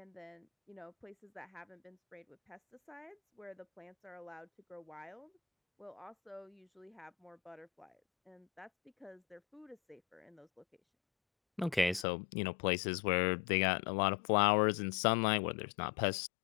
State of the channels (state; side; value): drops out; right; at 12.1 s